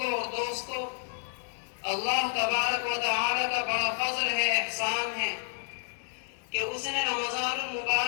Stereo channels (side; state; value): right; silent; 58 dB below the other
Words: اور دوستوں، اللہ تبارک و تعالی کا بڑا فضل ہے، احسان ہے کہ اس نے رمضان